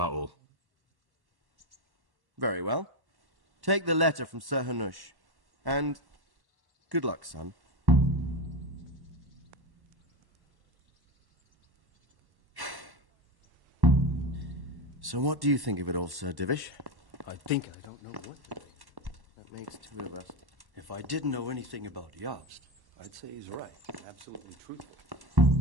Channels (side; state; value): left; late; 1.1 ms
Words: all. Very well. Take the letter from Sir Hanush. And good luck, son. So what do you think of it all, Sir Divish? I think I don't know what to think. That makes two of us. If I didn't know anything about Jobst, I'd say he's right. Absolutely truthful.